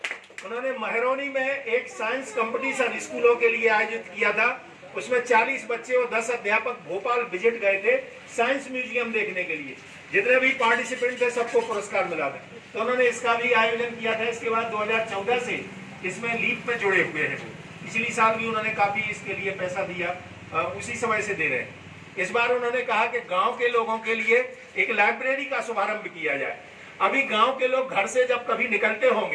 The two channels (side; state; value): both; identical; correlation 1.00